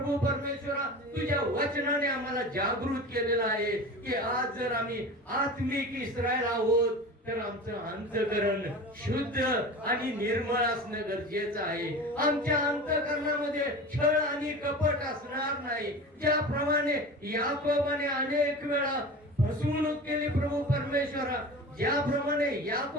परमेश्वरा तुझ्या वचनाने आम्हाला जागृत केलेला आहे की आज जर आम्ही आत्मिक इस्रायल आहोत तर आमचं अंतःकरण शुद्ध आणि निर्मळ असणं गरजेचं आहे। आमच्या अंतःकरणामध्ये छळ आणि कपट असणार नाही। ज्याप्रमाणे याकोबाने अनेक वेळा फसवणूक केली प्रभू परमेश्वरा, ज्याप्रमाणे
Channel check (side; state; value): both; normal; correlation 0.33